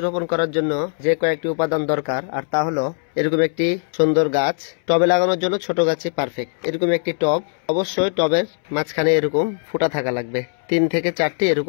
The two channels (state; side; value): silent; right; 65 dB below the other